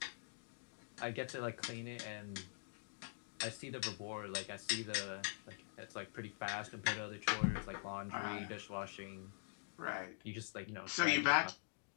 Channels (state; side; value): silent; right; digital silence